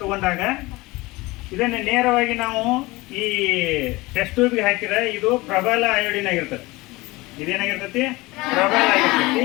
ತೊಗೊಂಡಾಗ ಇದನ್ನು ನೇರವಾಗಿ ನಾವು ಈ ಟೆಸ್ಟ್ ಟ್ಯೂಬ್ಗೆ ಹಾಕಿದ್ರೆ ಇದು ಪ್ರಬಲ ಅಯೋಡಿನ್ ಆಗಿರ್ತದೆ. ಇದೇನಾಗಿರ್ತೈತಿ? ಪ್ರಬಲ ಆಗಿರ್ತೈತಿ.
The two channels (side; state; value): right; quieter; 21.6 dB